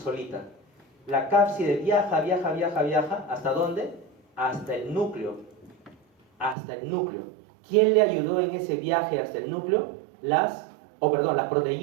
La cápside viaja, ¿hasta dónde? Hasta el núcleo. Hasta el núcleo. ¿Quién le ayudó en ese viaje hasta el núcleo? Las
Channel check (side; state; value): left; drops out; at 6.6 s